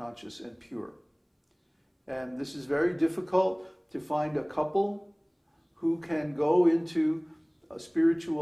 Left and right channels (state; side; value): identical; both; correlation 1.00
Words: and pure. And this is very difficult to find a couple who can go into a